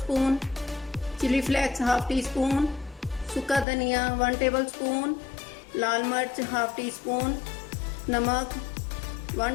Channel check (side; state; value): right; drops out; at 3.7 s